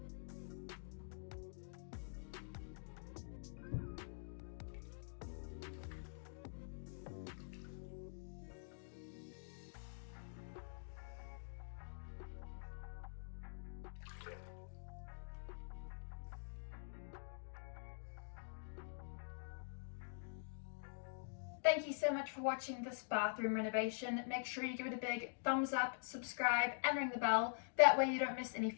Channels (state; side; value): silent; right; digital silence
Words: Thank you so much for watching this bathroom renovation. Make sure you give it a big thumbs up, subscribe, and ring the bell. That way you don't miss any